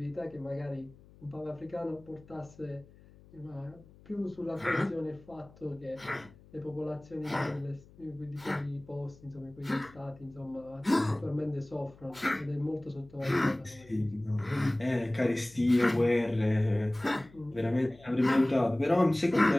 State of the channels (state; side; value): noise; left; hum, 24 dB below the sound